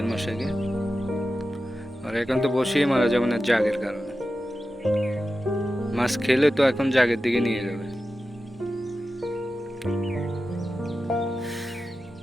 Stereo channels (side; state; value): both; normal; correlation 0.92